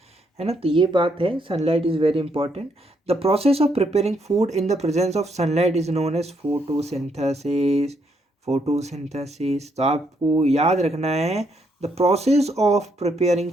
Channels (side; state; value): both; normal; correlation 0.74